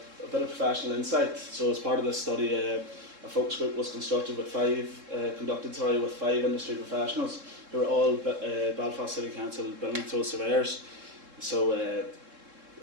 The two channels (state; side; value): late; left; 3.7 ms